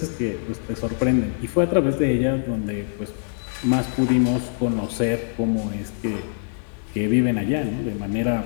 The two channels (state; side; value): silent; right; digital silence